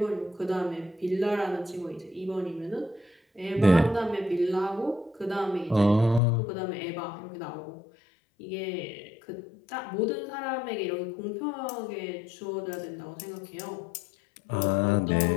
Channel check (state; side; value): drops out; right; at 6.2 s